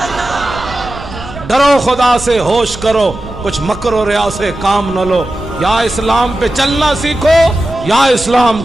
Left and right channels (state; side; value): noise; right; rumble, 14 dB below the sound